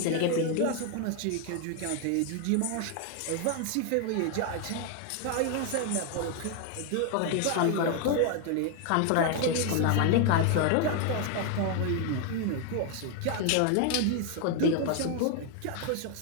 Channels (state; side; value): different; both; correlation 0.00